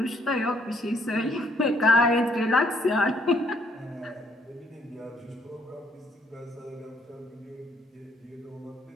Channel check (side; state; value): both; normal; correlation 0.67